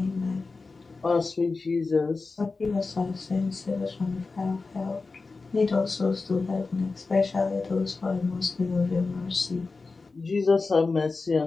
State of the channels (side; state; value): right; quieter; 4.0 dB